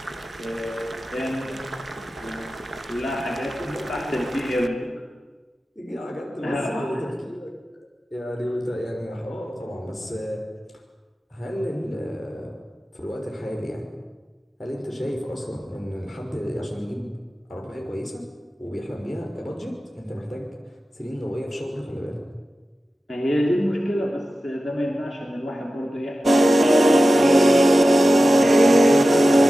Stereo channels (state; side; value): normal; both; correlation 0.94